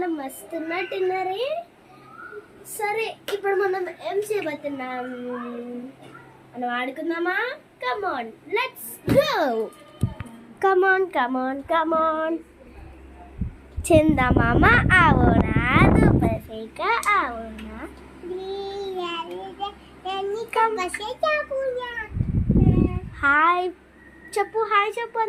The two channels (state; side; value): identical; both; correlation 1.00